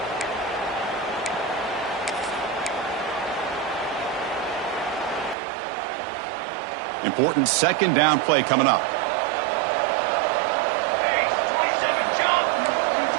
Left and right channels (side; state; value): left; drops out; at 5.4 s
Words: Important second down play coming up.